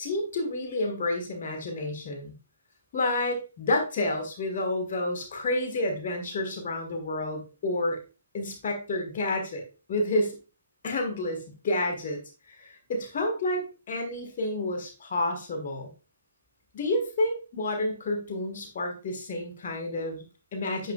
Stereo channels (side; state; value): both; inverted; correlation -0.60